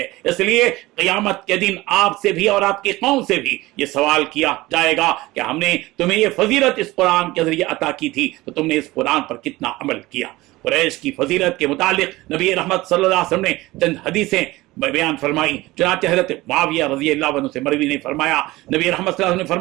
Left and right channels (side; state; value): left; quieter; 19.3 dB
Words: اس لیے قیامت کے دن آپ سے بھی اور آپ کی قوم سے بھی یہ سوال کیا جائے گا کہ ہم نے تمہیں یہ فضیلت اس قرآن کے ذریعے عطا کی تھی تو تم نے اس قرآن پر کتنا عمل کیا. قریش کی فضیلت کے متعلق نبی رحمت صلی اللہ علیہ وسلم نے چند حدیثیں بیان فرمائی. چنانچہ حضرت معاویہ رضی اللہ عنہ سے مروی نے فرمایا، نبی رحمت صلی اللہ علیہ وسلم نے